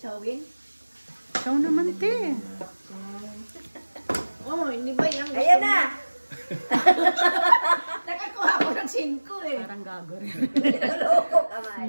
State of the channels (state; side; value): inverted; both; correlation -1.00